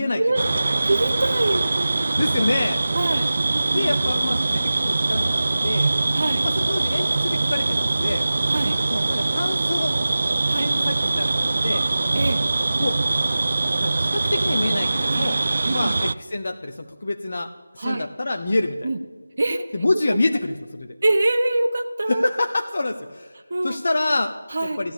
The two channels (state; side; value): inverted; both; correlation -0.96